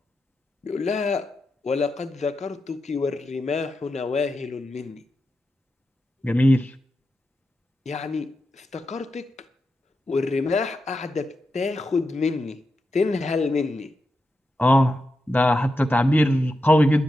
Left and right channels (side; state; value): both; normal; correlation 0.88